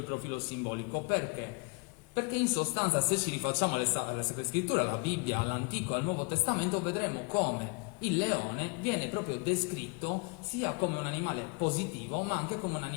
profilo simbolico. Perché? Perché in sostanza, se ci rifacciamo alle Sacre Scritture, alla Bibbia, all'Antico e al Nuovo Testamento, vedremo come il leone viene proprio descritto sia come un animale positivo, ma anche come un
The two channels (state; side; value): quieter; right; 31.9 dB